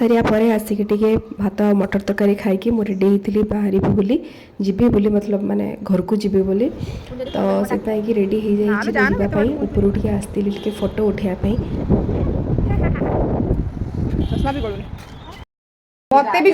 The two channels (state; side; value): identical; both; correlation 1.00